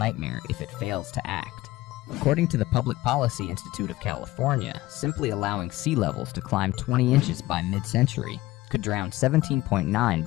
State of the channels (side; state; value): right; quieter; 17.6 dB